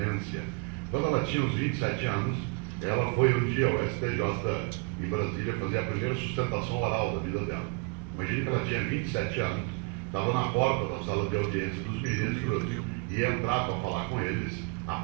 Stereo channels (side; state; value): left; quieter; 30.1 dB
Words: Quando ela tinha uns 27 anos, ela foi um dia ao STJ em Brasília fazer a primeira sustentação oral da vida dela. Imagine que ela tinha 27 anos, estava na porta da sala de audiência dos ministros e entrar para falar com eles, a